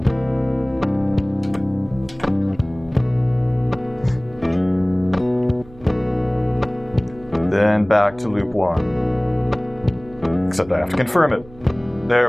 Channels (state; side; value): noise; right; hum, 22 dB below the sound